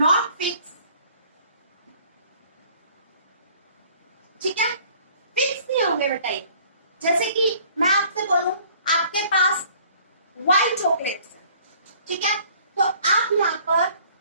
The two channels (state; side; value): inverted; both; correlation -0.55